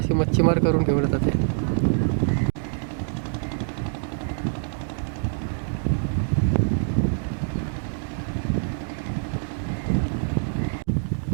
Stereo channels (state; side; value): silent; left; digital silence